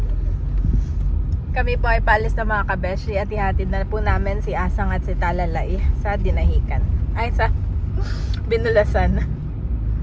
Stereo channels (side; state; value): both; identical; correlation 1.00